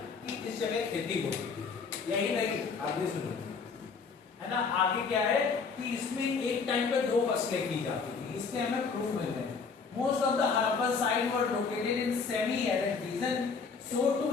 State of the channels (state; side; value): quieter; right; 5.2 dB